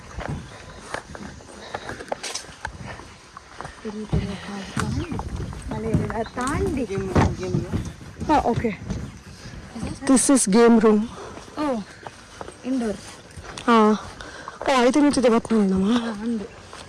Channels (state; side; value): identical; both; correlation 1.00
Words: Okay. This is game room. Oh, indoor. ಐದು ನಿಂತಿದೆ ಬತ್ತು ನಮ್ಮ